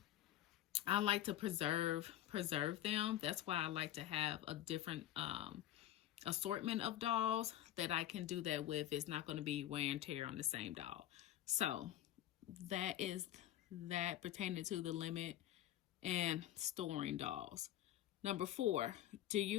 I like to preserve them. That's why I like to have a different assortment of dolls that I can do that with. It's not going to be wear and tear on the same doll. So that is that pertaining to the limit and storing dolls. Number 4, do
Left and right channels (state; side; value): quieter; right; 13.1 dB